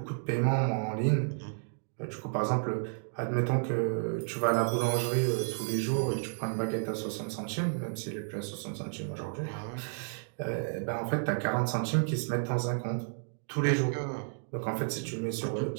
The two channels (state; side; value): silent; left; digital silence